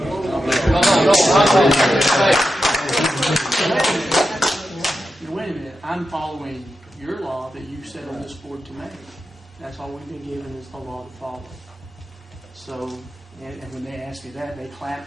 Wait a minute. I'm following your law that you set on this board to make. That's all we've been given is the law to follow. So, and when they asked me that, they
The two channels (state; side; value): normal; both; correlation 0.89